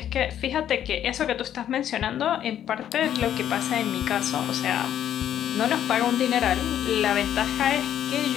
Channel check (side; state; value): right; quieter; 10.5 dB